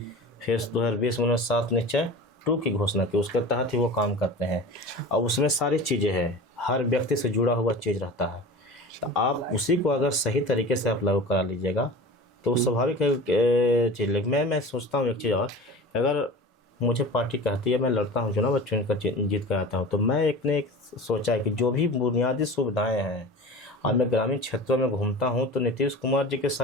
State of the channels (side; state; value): both; normal; correlation 0.36